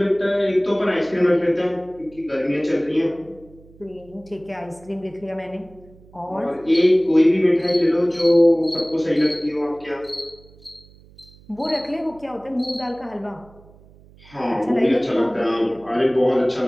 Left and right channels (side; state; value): right; noise; hum, 25 dB below the sound